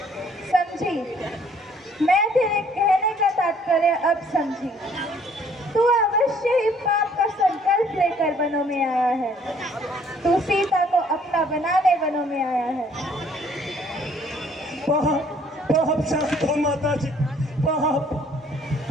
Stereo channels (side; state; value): both; normal; correlation 0.60